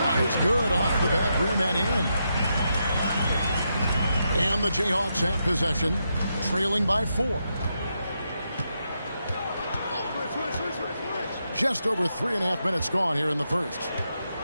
is good off the back rim and in. And the Jayhawks have possession. Trailing by 4. Just over 3.5 minutes gone here in the first.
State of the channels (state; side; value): inverted; both; correlation -0.83